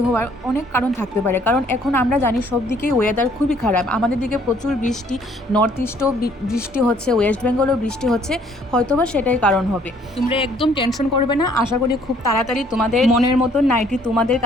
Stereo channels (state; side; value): normal; both; correlation 0.62